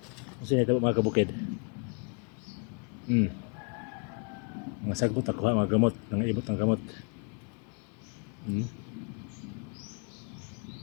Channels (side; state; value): right; quieter; 35.5 dB